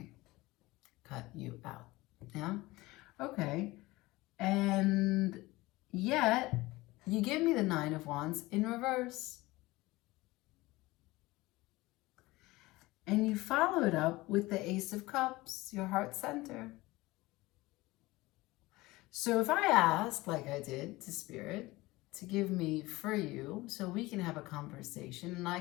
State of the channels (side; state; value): right; quieter; 20.2 dB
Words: Cut you out. Yeah? Okay. And yet, you give me the Nine of Wands in reverse. And you follow it up with the Ace of Cups, your heart center. So if I ask, like I did to Spirit, to give me for you so we can have a conversation and I